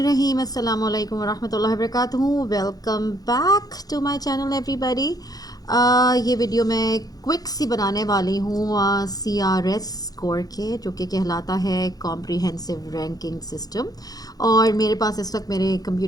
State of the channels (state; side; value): late; right; 0.18 ms